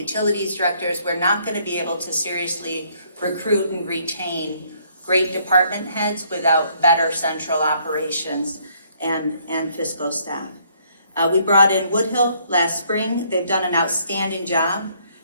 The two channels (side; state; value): both; inverted; correlation -0.66